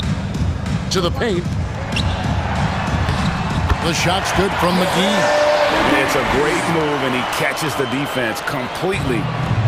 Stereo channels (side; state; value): both; identical; correlation 1.00